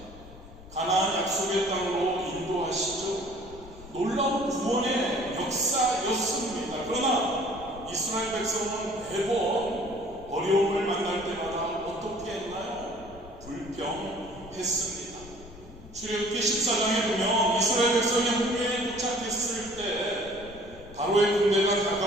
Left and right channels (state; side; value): noise; left; rumble, 18 dB below the sound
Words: 가나안 약속의 땅으로 인도하시죠. 구원의 역사였습니다. 그러나 이스라엘 백성은 매번 어려움을 만날 때마다 어떻게 했나요? 불평했습니다. 출애굽기 14장에 보면 이스라엘 백성이 홍해에 도착했을 때 바로의 군대가